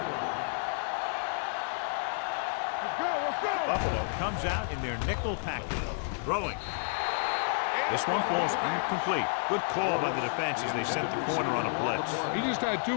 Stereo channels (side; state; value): right; silent; 57 dB below the other